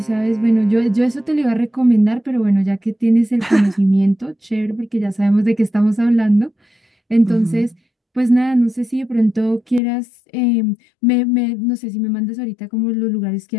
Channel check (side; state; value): right; drops out; at 9.8 s